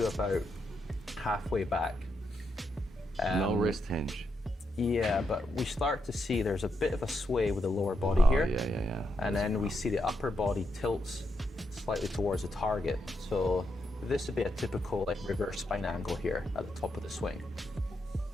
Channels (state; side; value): normal; both; correlation 0.82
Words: about halfway back, no wrist hinge. yeah, but we start to see there's a bit of a sway with the lower body here. Yeah. And then we see the upper body tilts slightly towards the target. So this would be a typical reverse spine angle here at the top of the swing.